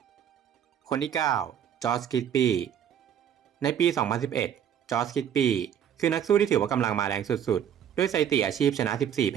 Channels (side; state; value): left; quieter; 9.2 dB